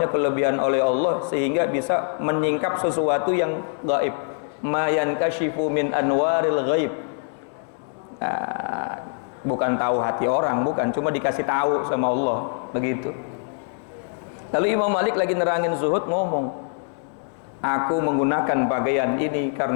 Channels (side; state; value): right; silent; digital silence